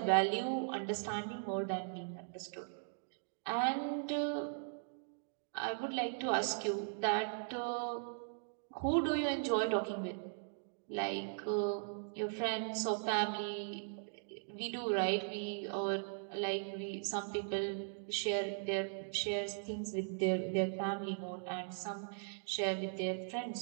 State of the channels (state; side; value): silent; left; digital silence